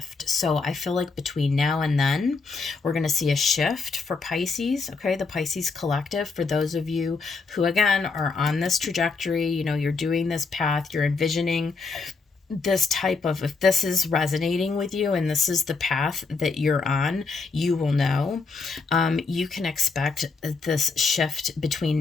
So I feel like between now and then, we're going to see a shift for Pisces, okay? The Pisces collective, for those of you who, again, are on this trajectory, you know, you're doing this path, you're envisioning this type of, if this is resonating with you and this is the path that you're on, you will know. You can expect this shift between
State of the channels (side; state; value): right; quieter; 4.4 dB